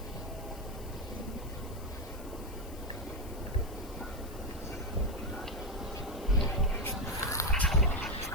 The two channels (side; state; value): left; noise; hiss, 18 dB below the sound